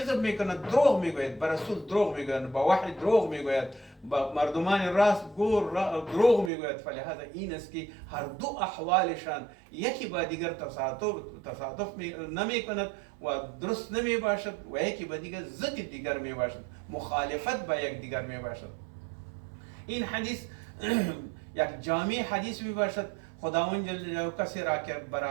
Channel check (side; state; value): left; drops out; at 6.5 s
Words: میکنند، دروغ میگوید، به رسول دروغ میگوید، با وحی دروغ میگوید، با مردمان راست گور دروغ میگوید. فلهذا این است که هر دو احوالشان یکی با دیگر تصادف نمیکند و درست نمی باشد و یکی با دیگر ضد دیگر می باشد، مخالفت با یک دیگر می باشد. این حدیث یک جامع حدیث می باشد. خداوند جل جلاله کسی را که به